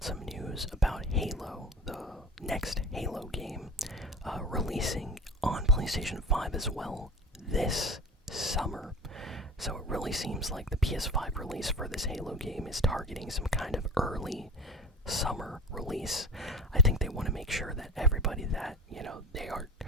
some news about Halo, the next Halo game, releasing on PlayStation 5 as well this summer. So it really seems like the PS5 release for this Halo game is targeting some kind of early summer release. I think they want to make sure that everybody that, they are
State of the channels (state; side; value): normal; both; correlation 0.33